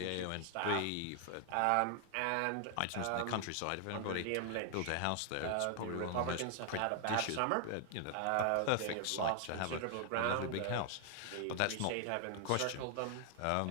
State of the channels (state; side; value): different; both; correlation 0.00